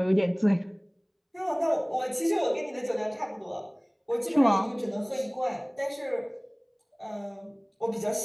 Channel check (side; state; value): both; identical; correlation 1.00